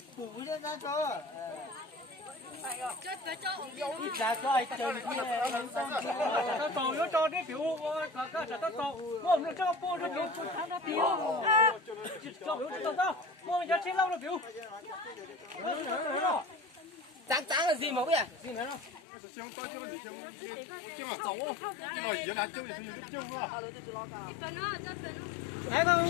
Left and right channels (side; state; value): right; drops out; at 19.0 s